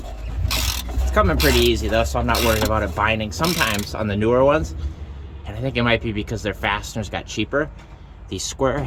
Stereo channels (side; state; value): both; identical; correlation 1.00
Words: It's coming pretty easy though, so I'm not worried about it binding. Sometimes on the newer ones, and I think it might be because their fasteners got cheaper, the square